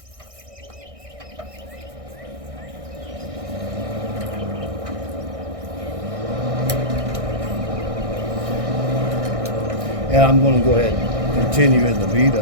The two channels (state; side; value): late; left; 1.6 ms